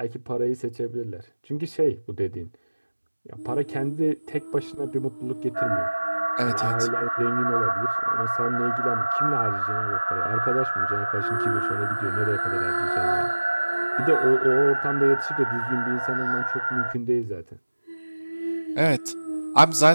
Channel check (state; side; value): inverted; both; correlation -1.00